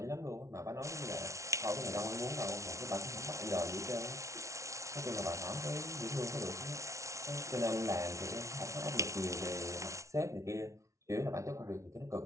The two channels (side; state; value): left; late; 0.14 ms